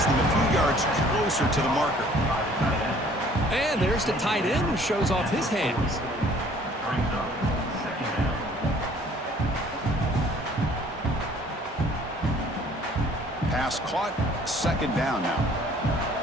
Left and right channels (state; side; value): normal; both; correlation 0.56